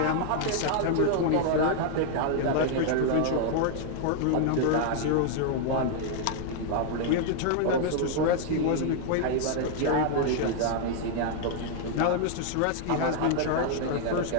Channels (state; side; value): different; both; correlation 0.00